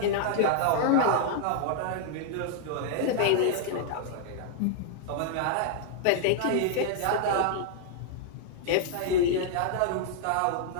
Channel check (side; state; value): both; different; correlation -0.01